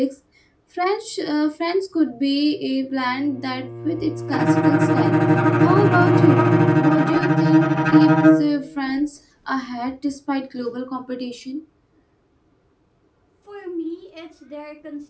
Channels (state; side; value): identical; both; correlation 1.00